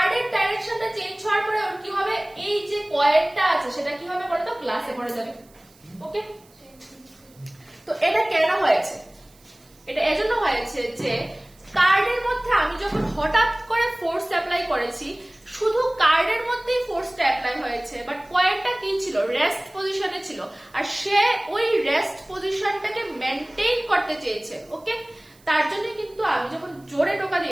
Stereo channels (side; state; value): right; noise; hiss, 29 dB below the sound